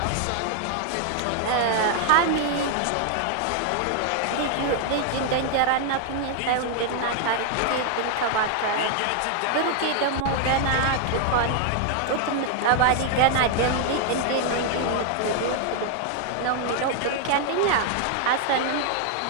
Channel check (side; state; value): both; different; correlation 0.00